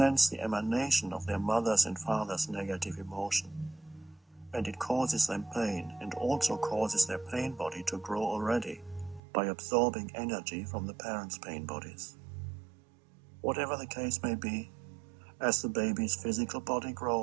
the emanation of their mother's and father's negative emotion, and it causes them pain and also causes their pain body to grow already by absorbing energy from the parents' pain bodies. Whatever the case may be, as the baby's physical body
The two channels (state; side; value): drops out; left; at 9.2 s